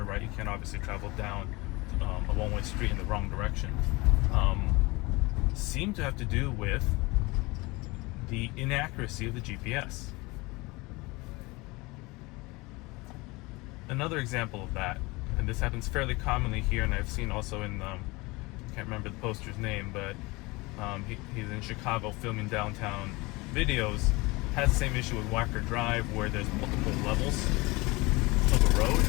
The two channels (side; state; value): right; quieter; 23.7 dB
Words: right? You can't obviously travel down a one-way street in the wrong direction. seem to have to do with the inaccuracy of the GPS. Another example of that, and this happens fairly commonly here, and I've seen also in, I can't remember the poster's name, but he's in Chicago filming downtown videos, has the same issue with Wacker Drive where there's multiple levels of a road.